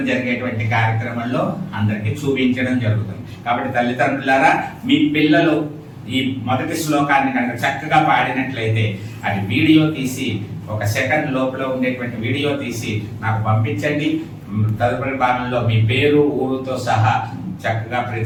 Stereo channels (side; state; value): both; identical; correlation 1.00